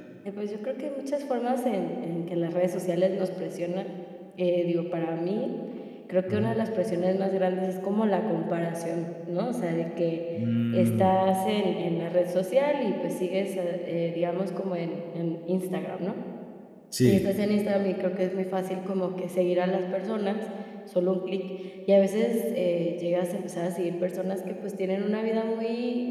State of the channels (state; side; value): identical; both; correlation 1.00